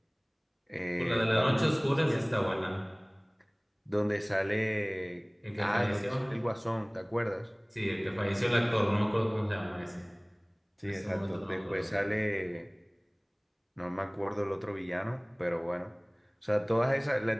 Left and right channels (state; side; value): identical; both; correlation 1.00